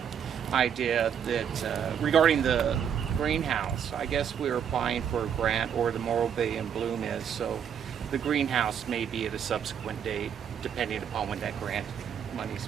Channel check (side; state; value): left; quieter; 8.2 dB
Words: idea that regarding the greenhouse, I guess we're applying for a grant, or the Morro Bay and Bloom is, so the greenhouse may be at a subsequent date, depending upon when that grant monies